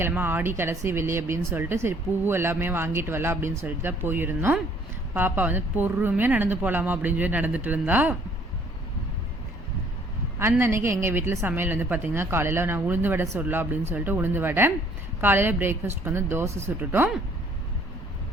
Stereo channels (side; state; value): both; normal; correlation 0.60